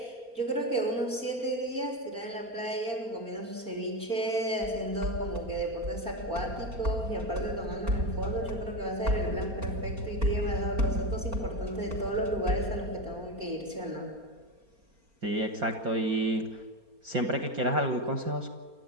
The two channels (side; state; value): left; late; 4.3 ms